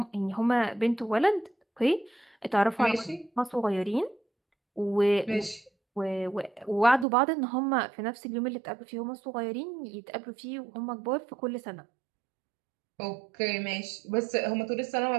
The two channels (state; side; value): drops out; left; at 7.1 s